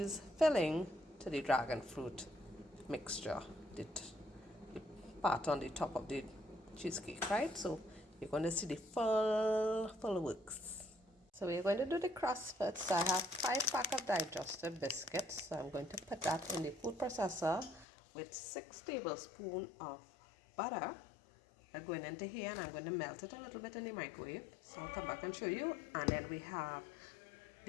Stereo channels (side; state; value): right; drops out; at 17.9 s